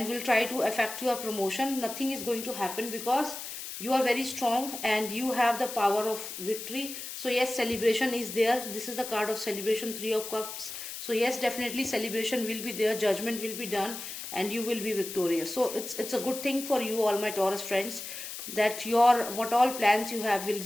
will try to affect your promotion, nothing is going to happen, because you are very strong and you have the power of victory. So yes, celebration is there. This is the card of celebration, 3 of Cups. So yes, definitely celebration will be there, judgment will be done, and you will be victorious. So it's a good thing for you, all my Taurus friends, that your what all plans you have will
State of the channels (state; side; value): noise; left; hiss, 8 dB below the sound